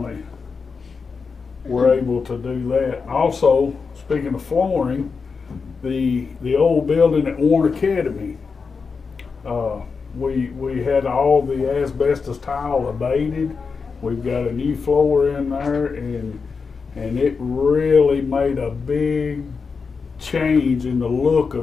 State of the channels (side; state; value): right; quieter; 5.1 dB